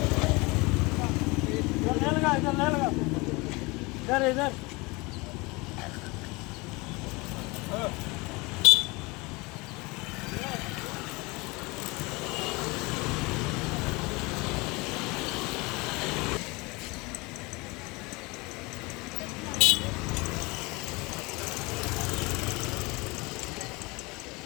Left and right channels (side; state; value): right; quieter; 25.3 dB